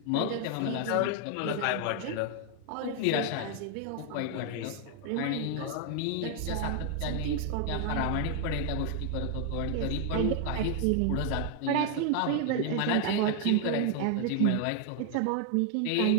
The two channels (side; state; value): both; different; correlation 0.00